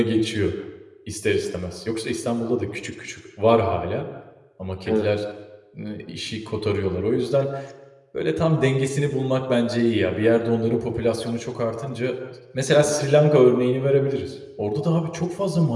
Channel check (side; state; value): both; identical; correlation 1.00